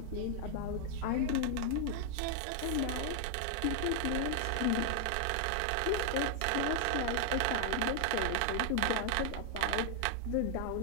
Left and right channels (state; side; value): different; both; correlation 0.00